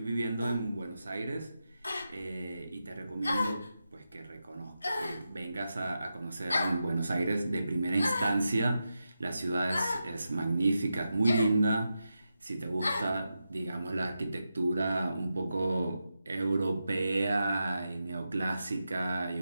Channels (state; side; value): inverted; both; correlation -0.89